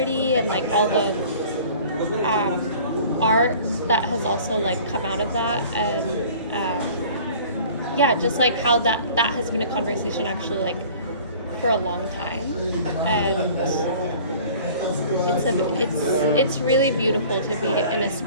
and like all the art that has also like come out of that, and yeah, just like how that has been a conversation actually like for a long time, and it's really beautiful to be in a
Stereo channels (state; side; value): inverted; both; correlation -0.47